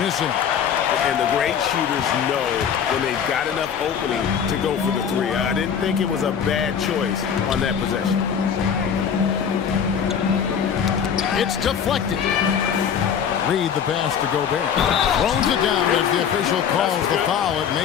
missing. And the great shooters know when they've got enough opening to go for the 3. I didn't think it was a bad choice on that possession. It's deflected. Reed the pass to Gobert. Throws it down as the official calls the foul. It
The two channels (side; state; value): right; quieter; 7.8 dB